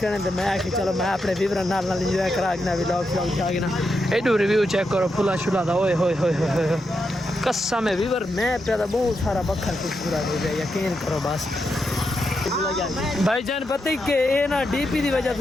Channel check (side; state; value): both; normal; correlation 0.85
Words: करें तो मैं आके चलो मैं अपने व्यूअर नाल इंजॉय करा के ना व्लॉग ना एडू रिव्यू चेक करो फुला शुला था ओए होए कसम है व्यूअर मैं पैदा बहुत सारा बखर खूबसूरत हो गया यकीन करो बस भाईजान पता ही के ये ना डीपी की वजह